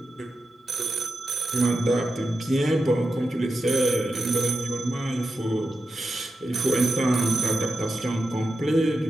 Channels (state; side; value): normal; both; correlation 0.90